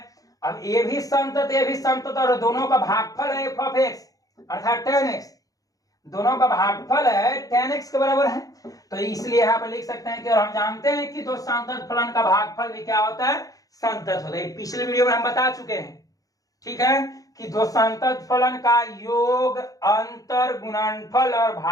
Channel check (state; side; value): late; right; 0.17 ms